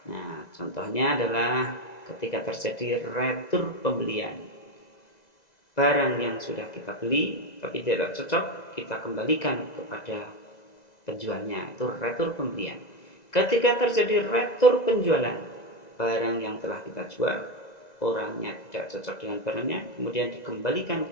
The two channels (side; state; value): right; late; 1.9 ms